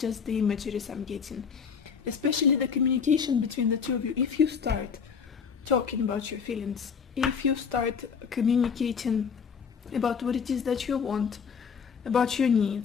the imageries I'm getting, especially the communication between the two of you. If you start talking about your feelings, if you start communicating about what it is that you want, about your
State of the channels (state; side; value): quieter; right; 6.4 dB